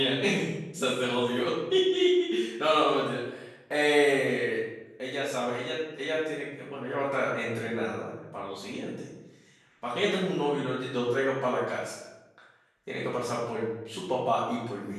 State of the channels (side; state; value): both; identical; correlation 1.00